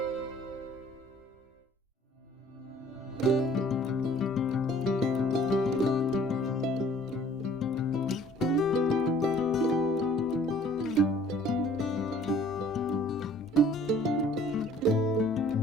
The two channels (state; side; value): normal; both; correlation 0.54